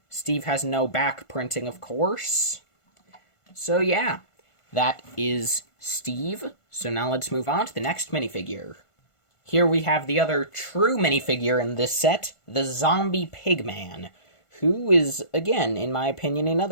Steve has no back printing, of course. So yeah, that is Steve. So now let's move on to the next minifigure. Here we have the other true minifigure in this set, the Zombie Pigman, who is, again, in my opinion,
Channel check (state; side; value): late; right; 1.5 ms